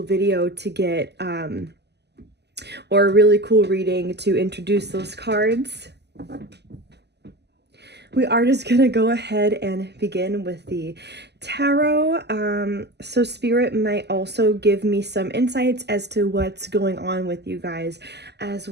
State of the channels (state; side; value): late; left; 0.49 ms